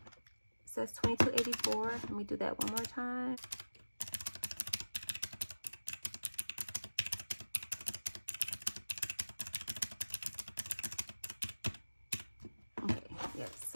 It says 2284. Let me do that one more time. Okay, yes,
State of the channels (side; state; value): both; inverted; correlation -1.00